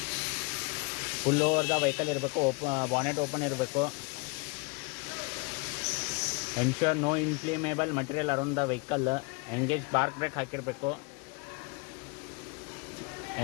ಫುಲ್ ಓವರ್ ದ ವೆಹಿಕಲ್ ಇರಬೇಕು, ಬಾನೆಟ್ ಓಪನ್ ಇರಬೇಕು. Ensure no inflammable material around the vehicle. Engage park brake ಹಾಕಿರಬೇಕು.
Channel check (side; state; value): right; quieter; 29.9 dB